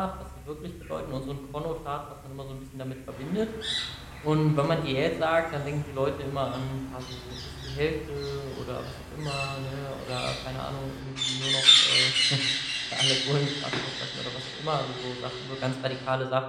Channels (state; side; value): identical; both; correlation 1.00